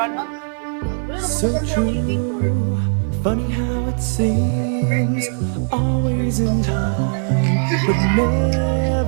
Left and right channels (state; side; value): silent; left; 56 dB below the other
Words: So true, funny how it seems, always in time, but